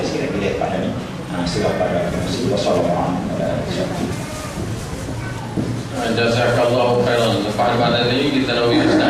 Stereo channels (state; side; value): identical; both; correlation 1.00